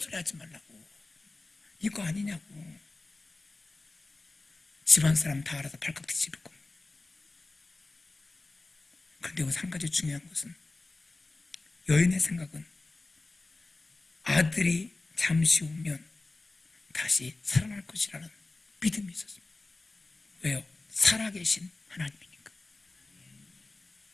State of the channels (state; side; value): quieter; right; 3.2 dB